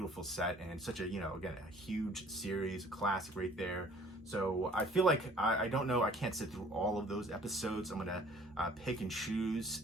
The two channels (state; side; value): normal; both; correlation 0.54